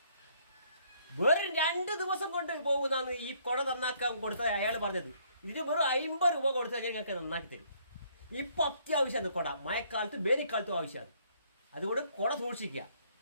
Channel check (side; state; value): both; inverted; correlation -0.65